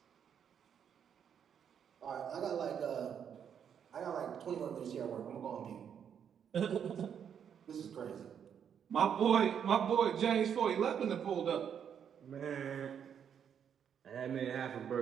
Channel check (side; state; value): left; quieter; 8.2 dB